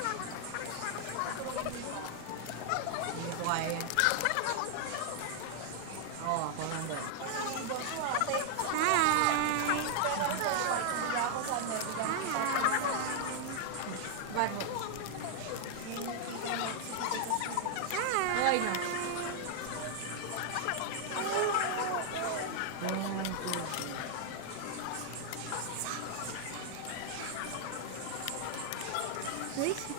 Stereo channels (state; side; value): different; both; correlation 0.00